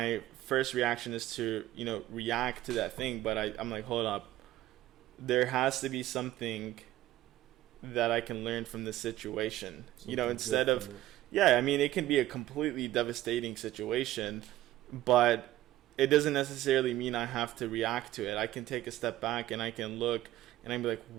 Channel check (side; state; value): left; quieter; 14.8 dB